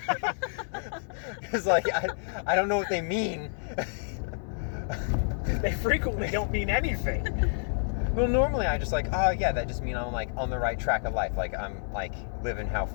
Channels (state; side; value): silent; right; 59 dB below the other